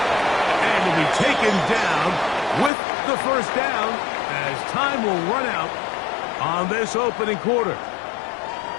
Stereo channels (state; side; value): drops out; right; at 2.7 s